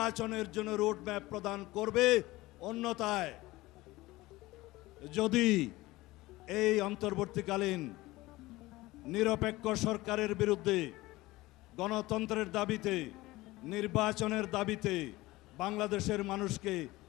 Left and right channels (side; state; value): right; quieter; 19.2 dB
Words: জন্য রোড ম্যাপ প্রদান করবে। অন্যথায় যদি এই অন্তর্বর্তীকালীন নিরপেক্ষ সরকারের বিরুদ্ধে গণতন্ত্রের দাবিতে, নির্বাচনের দাবিতে বাংলাদেশের মানুষকে